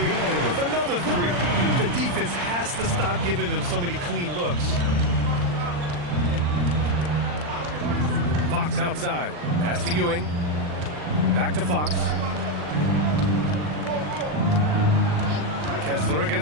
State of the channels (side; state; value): left; late; 40 ms